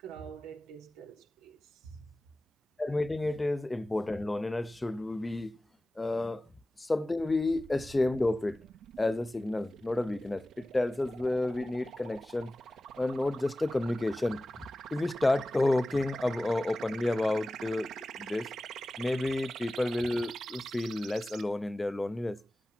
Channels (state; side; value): normal; both; correlation 0.96